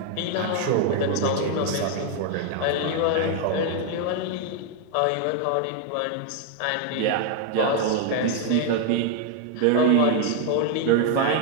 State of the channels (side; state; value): both; different; correlation 0.00